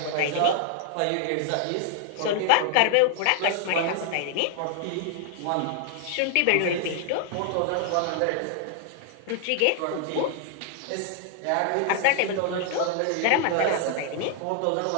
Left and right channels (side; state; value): both; different; correlation -0.01